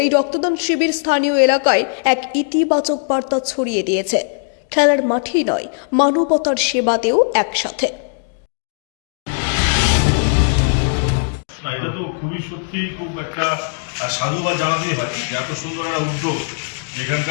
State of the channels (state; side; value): silent; right; digital silence